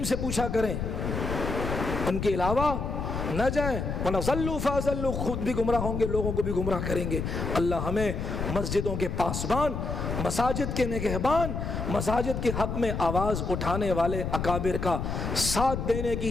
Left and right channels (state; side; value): noise; left; rumble, 3 dB below the sound